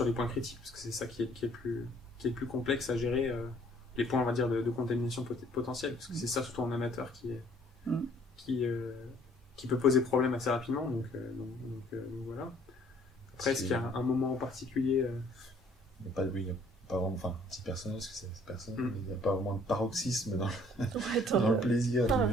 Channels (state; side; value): normal; both; correlation 0.59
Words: les points critiques, parce que c'est ça qui est le plus complexe à gérer, les points, on va dire, de contamination potentielle, parce que c'est ça surtout en amateur qui peut poser problème assez rapidement, donc voilà. Après, est-ce qu'il y a un moment en particulier Il n'y a pas vraiment, enfin, petit personnage, parce que c'est personnel, il n'y a pas vraiment de paroxysme dans le plaisir